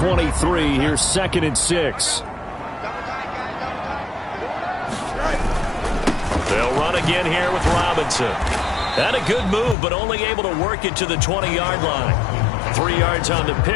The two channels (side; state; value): right; drops out; at 9.8 s